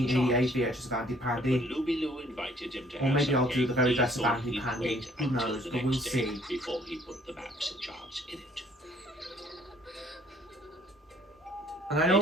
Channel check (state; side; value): normal; both; correlation 0.60